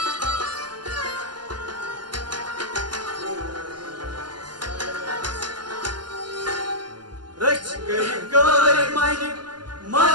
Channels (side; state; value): left; late; 0.71 ms